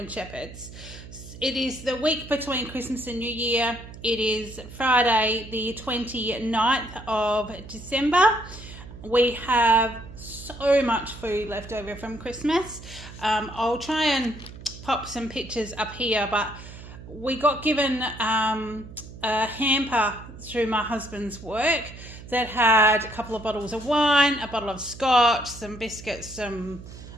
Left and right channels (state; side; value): noise; right; hum, 15 dB below the sound